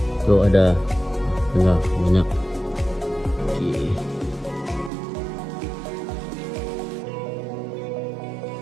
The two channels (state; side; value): drops out; left; at 4.9 s